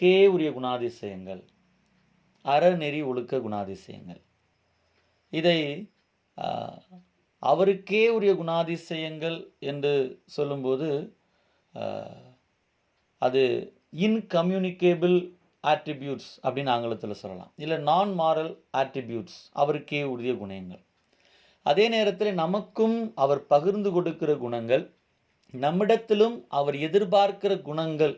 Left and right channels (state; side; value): identical; both; correlation 1.00